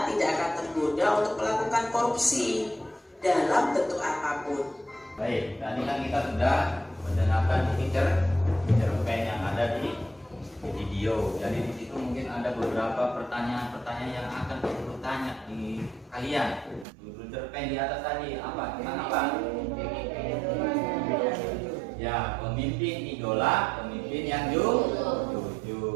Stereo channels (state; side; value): drops out; left; at 16.9 s